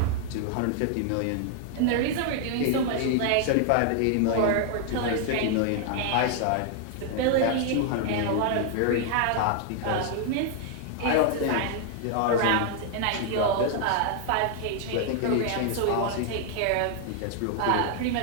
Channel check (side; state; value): both; different; correlation 0.00